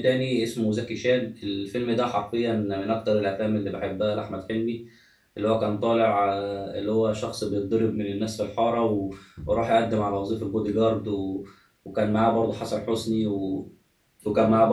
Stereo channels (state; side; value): identical; both; correlation 1.00